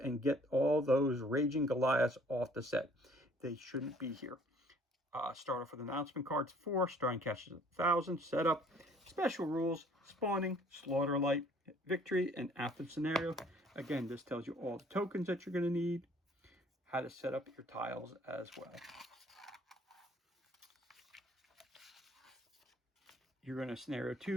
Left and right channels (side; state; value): both; normal; correlation 0.57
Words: and get all those raging Goliaths off the set. They shouldn't be here. Start off with announcement cards 4. Starting cash is 1,000. Setup. special rules, spawning, slaughter light, victory, and after the scenario. Again, this tells you all the tokens that you're going to need, how to set up your tiles as well. You're going to scenario